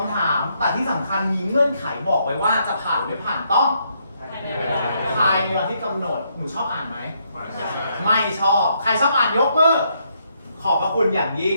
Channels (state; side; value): inverted; both; correlation -0.75